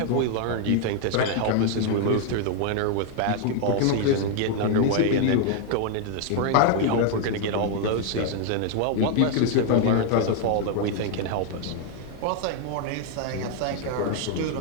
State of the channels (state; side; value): different; both; correlation 0.00